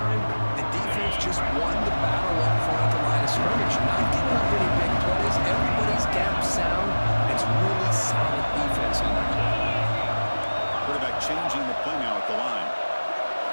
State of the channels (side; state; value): both; inverted; correlation -1.00